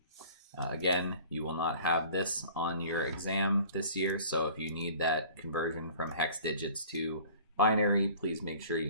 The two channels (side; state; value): both; inverted; correlation -0.47